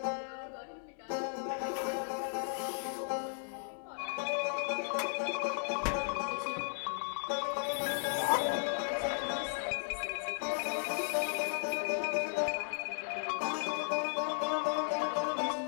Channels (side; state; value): right; silent; digital silence